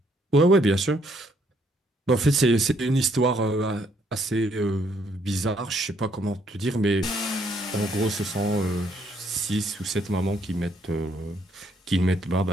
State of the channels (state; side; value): normal; both; correlation 0.69